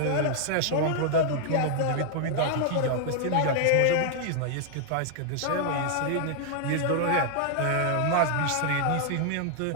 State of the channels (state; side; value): different; both; correlation 0.00